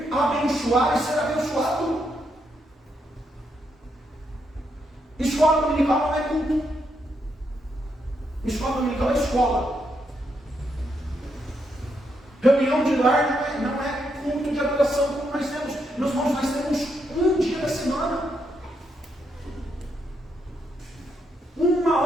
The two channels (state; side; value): normal; both; correlation 0.79